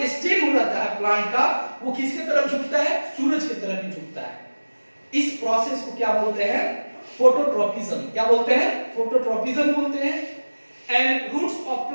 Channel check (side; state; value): both; inverted; correlation -1.00